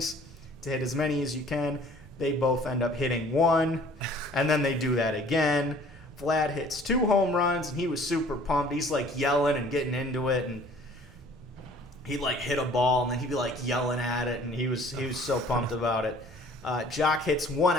to hit as many as you can. They both end up hitting 1, and then they do that again. Vlad hits 2 home runs, and he was super pumped. He's yelling and getting into it, and he'd hit a ball, and then he'd be yelling at it, and he was so pumped about it. Jock hits 1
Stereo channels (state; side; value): normal; both; correlation 0.52